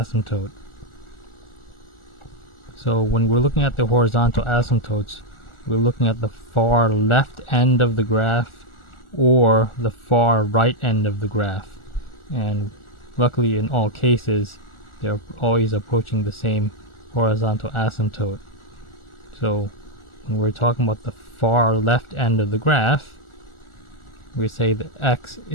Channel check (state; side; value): late; right; 1.4 ms